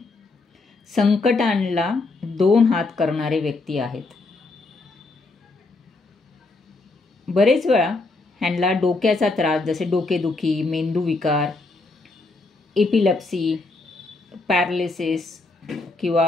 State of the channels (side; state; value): right; quieter; 3.4 dB